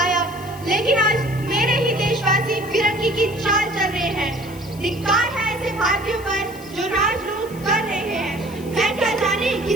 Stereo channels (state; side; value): noise; left; hiss, 20 dB below the sound